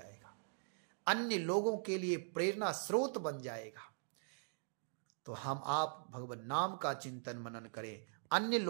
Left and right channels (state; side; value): silent; left; digital silence